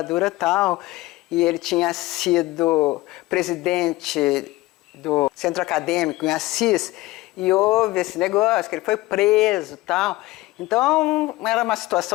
e tal, e ele tinha sido presidente do centro acadêmico em Assis, e houve esse negócio, que ele foi preso e tal. Então, era uma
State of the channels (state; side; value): quieter; right; 18.9 dB